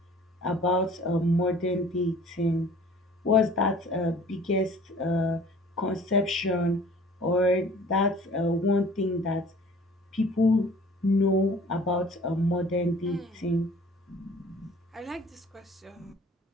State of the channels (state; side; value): normal; both; correlation 0.49